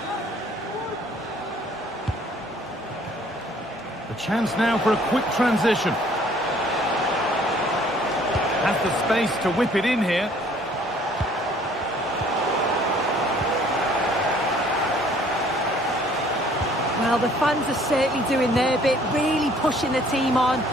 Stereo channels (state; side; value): normal; both; correlation 0.58